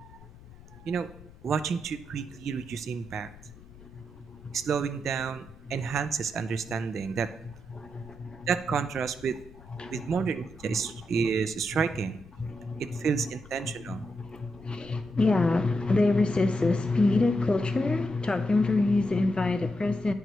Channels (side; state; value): left; noise; rumble, 21 dB below the sound